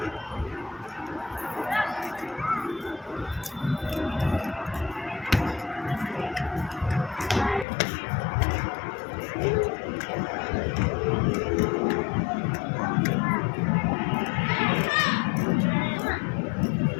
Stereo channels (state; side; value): drops out; right; at 7.7 s